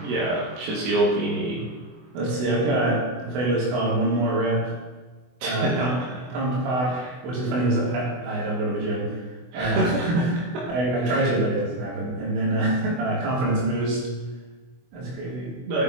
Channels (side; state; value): left; late; 24 ms